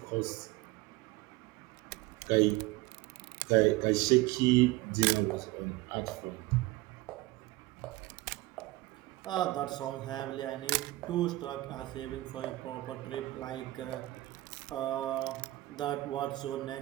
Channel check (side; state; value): left; quieter; 19.1 dB